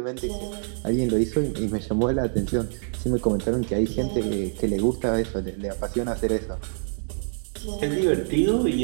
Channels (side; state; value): left; silent; digital silence